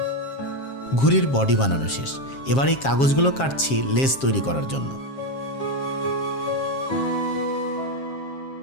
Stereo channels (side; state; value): right; late; 7.4 ms